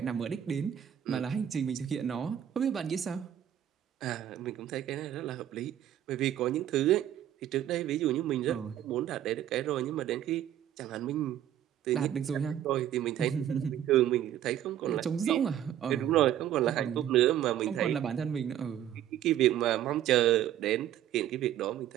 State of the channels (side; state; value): left; quieter; 11.1 dB